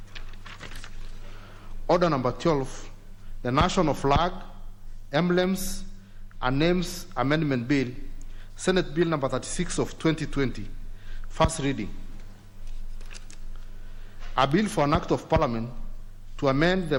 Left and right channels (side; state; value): both; identical; correlation 1.00